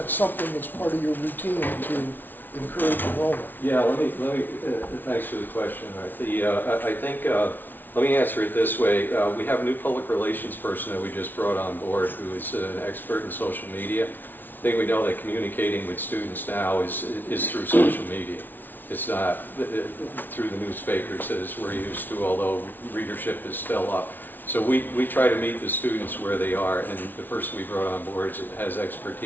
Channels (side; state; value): right; late; 0.090 ms